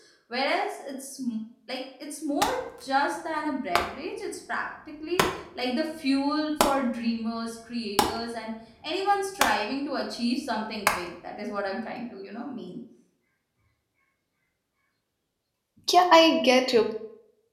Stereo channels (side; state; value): both; identical; correlation 1.00